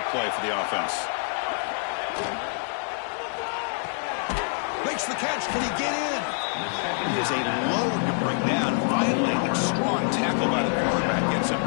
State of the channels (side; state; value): right; silent; 61 dB below the other